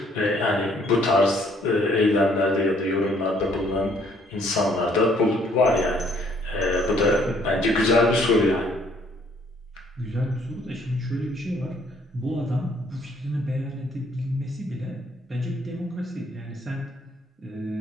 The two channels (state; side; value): normal; both; correlation 0.63